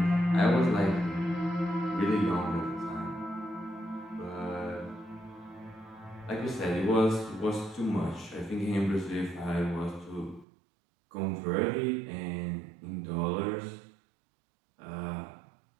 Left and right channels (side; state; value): left; drops out; at 10.5 s